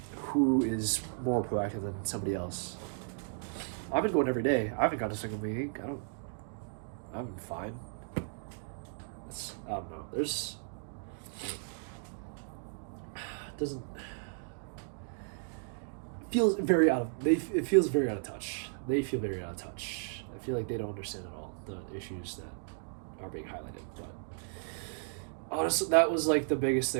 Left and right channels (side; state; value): left; silent; digital silence